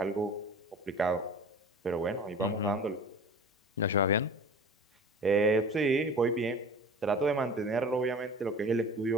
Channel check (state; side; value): normal; both; correlation 0.39